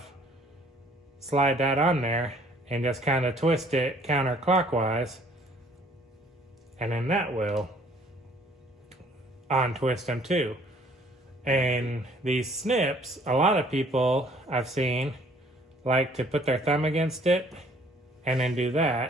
slide that on there, and just kind of twist it counterclockwise, and then that will untwist them too. And these snips, a lot of people I've seen like to put their thumb against it and then do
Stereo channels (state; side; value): normal; both; correlation 0.58